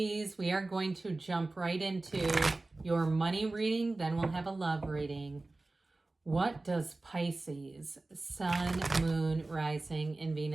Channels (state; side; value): quieter; left; 3.1 dB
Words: We are going to jump right into your money reading, then we'll have a love reading. What does Pisces, Sun, Moon, Rising, and